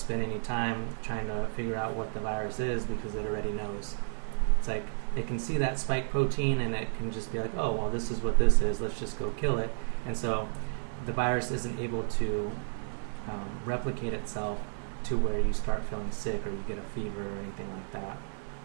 any time trying to figure out what the virus is because it already knows. It's like it can see that spike protein and it can just be like, oh, well, this is what this is. Let's just go kill it. And so the virus isn't able to replicate itself to where you start feeling sick or you get a fever or anything like that.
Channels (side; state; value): left; silent; digital silence